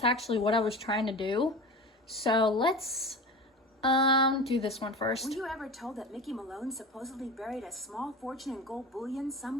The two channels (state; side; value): normal; both; correlation 0.32